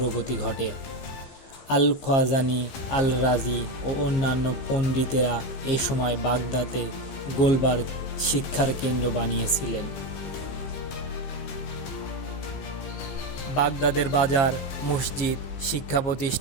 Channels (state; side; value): late; right; 15 ms